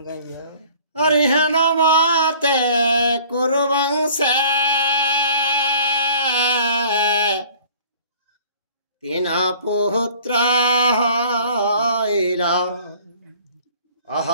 का विवाह? हरिहन माते कुरुवंशे तीन पुत्र हईला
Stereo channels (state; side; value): inverted; both; correlation -0.51